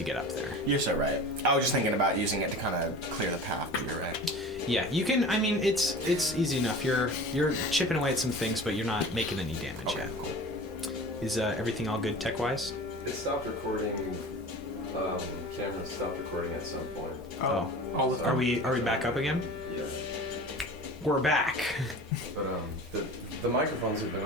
get up there. you're so right. I was just thinking about using it to kind of clear the path, but you're right. Yeah, you can. I mean, it's easy enough. You're chipping away at some things, but you're not making any damage yet. Is everything all good tech-wise? It stopped recording. Camera stopped recording at some point. Oh. All of Are we back up again? Yeah. We're back. But the The microphones have been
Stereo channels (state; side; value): normal; both; correlation 0.37